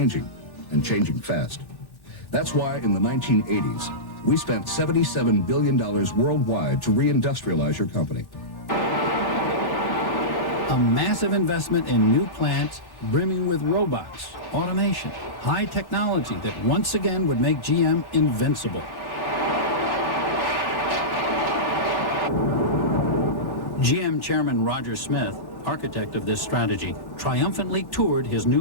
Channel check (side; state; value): right; late; 1.1 ms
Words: and changing fast. That's why in the 1980s, we spent $77 billion worldwide to reindustrialize your company. A massive investment in new plants brimming with robots, automation, high technology that once again would make GM invincible. GM Chairman Roger Smith, architect of this strategy, triumphantly toured his